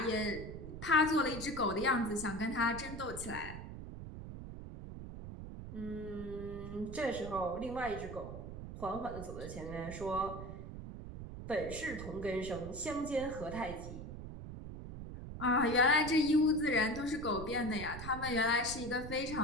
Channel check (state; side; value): noise; right; rumble, 10 dB below the sound